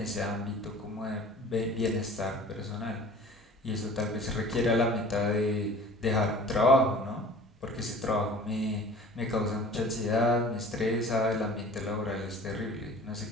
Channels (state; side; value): normal; both; correlation 0.45